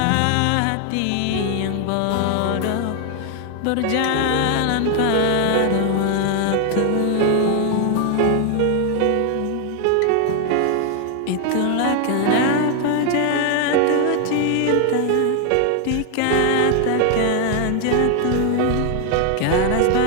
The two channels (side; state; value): both; different; correlation 0.00